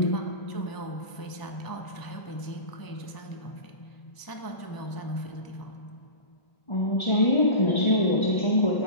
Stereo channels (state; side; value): late; right; 1.0 ms